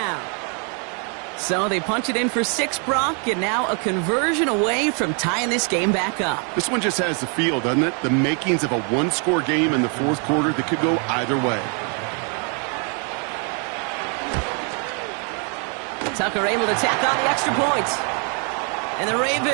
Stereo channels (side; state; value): left; quieter; 38.3 dB